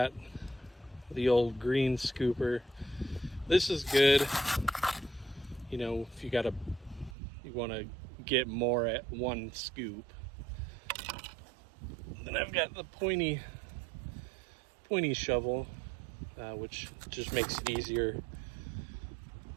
the old green scooper. This is good, you know, if you want to get more at one scoop. Then I've got the pointy shovel, which just makes it easier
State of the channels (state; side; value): drops out; left; at 7.2 s